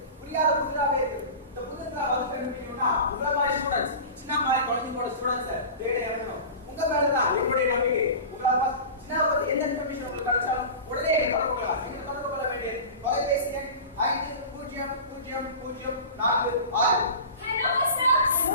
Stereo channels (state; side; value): inverted; both; correlation -0.33